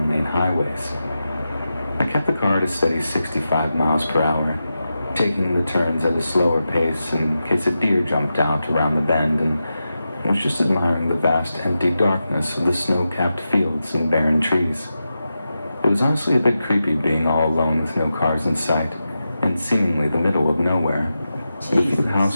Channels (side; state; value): both; inverted; correlation -0.90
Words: highways. I kept the car at a steady 65 miles per hour, taking the turns at a slower pace in case a deer jumped out around the bend, and was just admiring the vast empty darkness of the snow-capped fields and barren trees. It was honestly a bit creepy being all alone with no cars in sight, in seemingly the middle of nowhere. The few